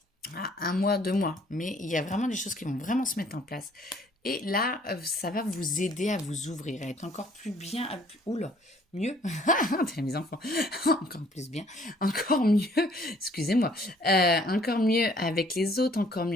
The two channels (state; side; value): normal; both; correlation 0.60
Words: à 1 mois, 2 mois. Mais il y a vraiment des choses qui vont vraiment se mettre en place. Et là, ça va vous aider à vous ouvrir, à être encore plus bien, oula, mieux, mes enfants, encore plus bien, encore mieux, excusez-moi, encore mieux avec les autres, encore